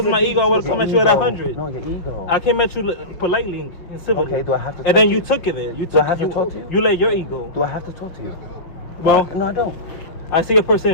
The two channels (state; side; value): late; right; 6.1 ms